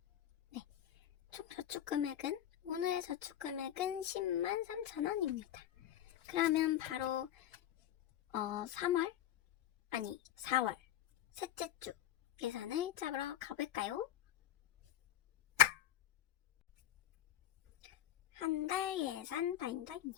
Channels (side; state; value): right; quieter; 11.6 dB